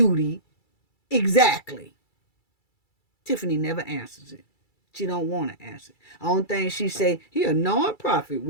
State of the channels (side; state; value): right; late; 2.3 ms